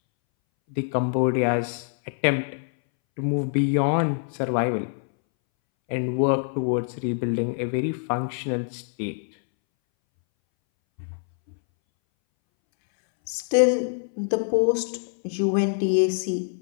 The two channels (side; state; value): right; silent; 62 dB below the other